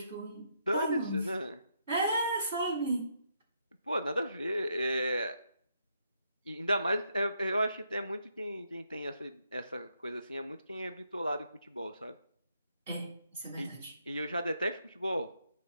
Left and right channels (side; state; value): both; inverted; correlation -0.76